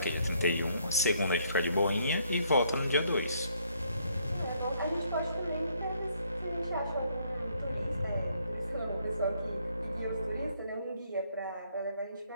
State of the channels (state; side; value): inverted; both; correlation -0.69